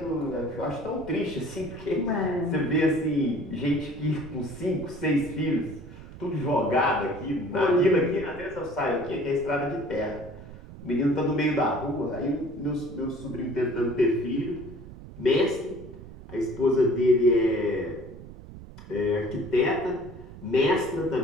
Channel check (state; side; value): noise; right; rumble, 15 dB below the sound